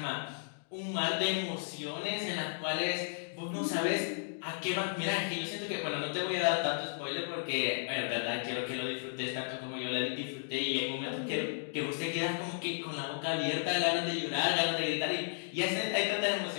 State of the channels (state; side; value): silent; right; digital silence